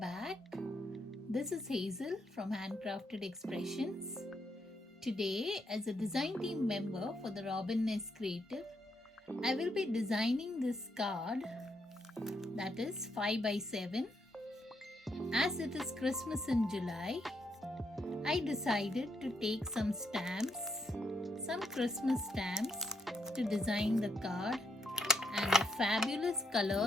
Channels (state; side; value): normal; both; correlation 0.77